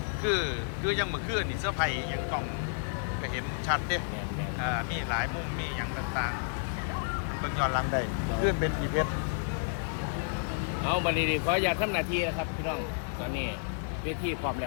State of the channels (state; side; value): silent; right; digital silence